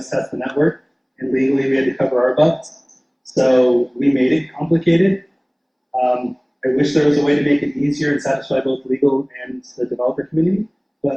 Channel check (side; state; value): both; identical; correlation 1.00